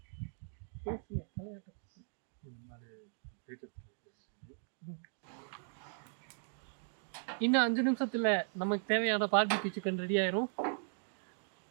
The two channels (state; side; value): silent; left; digital silence